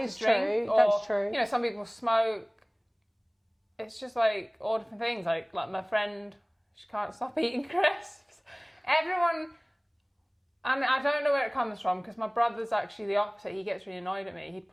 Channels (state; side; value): identical; both; correlation 1.00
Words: is drink. True. Or, that's true. You know, some people smoke. It's just like all different things. Like my friend, she can't stop eating crisps. Everyone. And I don't know where it comes from because my brother's actually the opposite. He gets really annoyed at me. He'd